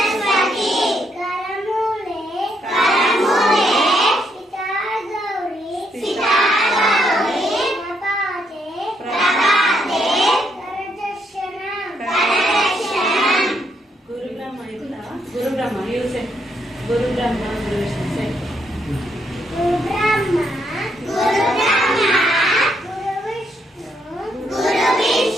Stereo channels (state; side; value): normal; both; correlation 0.75